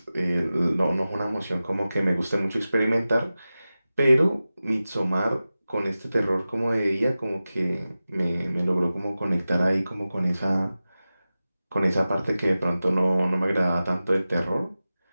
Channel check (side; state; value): both; inverted; correlation -0.95